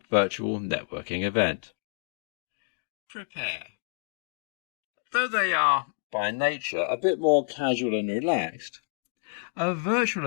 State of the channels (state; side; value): silent; right; 59 dB below the other